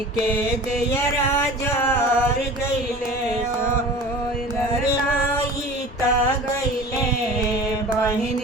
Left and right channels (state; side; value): normal; both; correlation 0.39